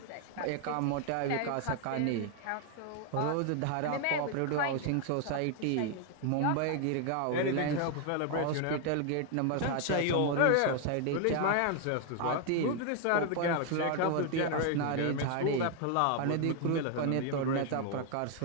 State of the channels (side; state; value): both; different; correlation 0.00